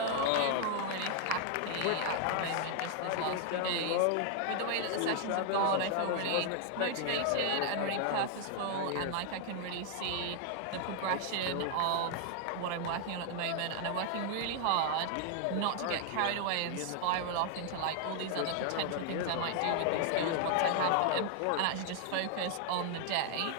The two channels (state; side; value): different; both; correlation 0.00